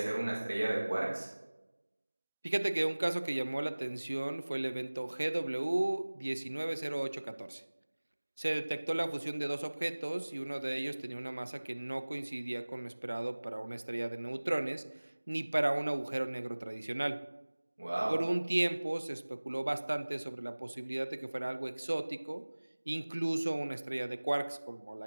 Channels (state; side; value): inverted; both; correlation -1.00